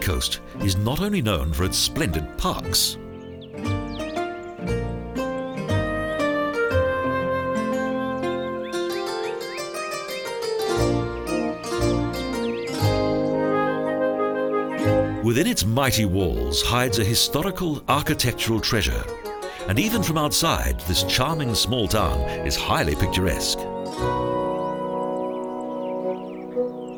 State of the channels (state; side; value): identical; both; correlation 1.00